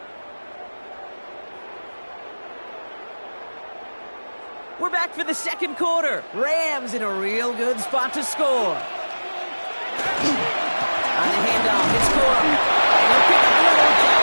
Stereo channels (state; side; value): inverted; both; correlation -1.00